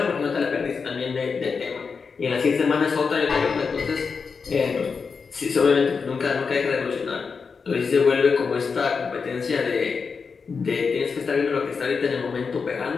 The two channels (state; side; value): quieter; right; 5.3 dB